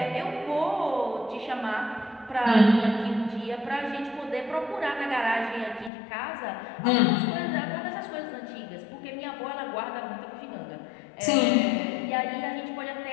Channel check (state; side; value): drops out; right; at 5.9 s